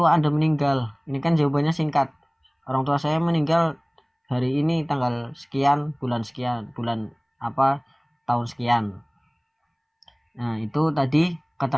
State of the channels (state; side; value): identical; both; correlation 1.00